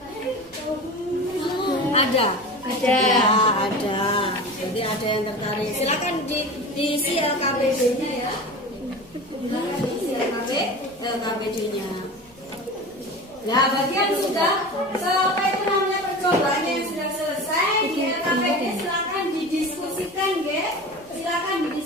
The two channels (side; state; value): right; noise; rumble, 26 dB below the sound